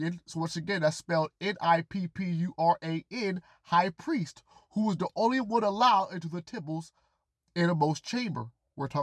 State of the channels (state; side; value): identical; both; correlation 1.00